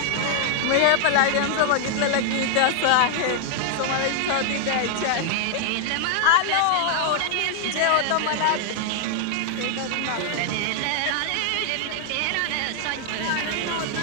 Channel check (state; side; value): different; both; correlation 0.00